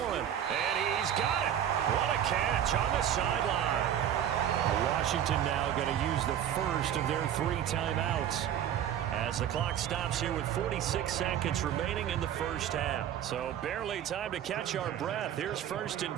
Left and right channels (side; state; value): left; quieter; 10.1 dB